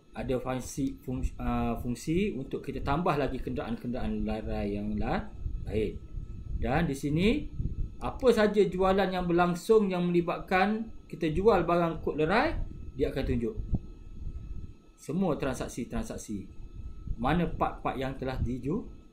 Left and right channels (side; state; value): both; identical; correlation 1.00